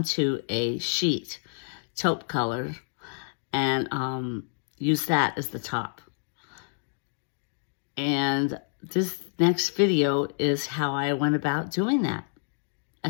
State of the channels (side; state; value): right; silent; digital silence